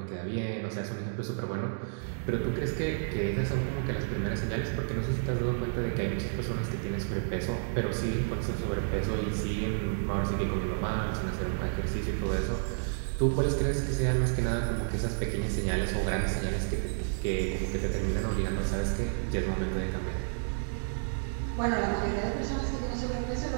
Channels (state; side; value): silent; left; digital silence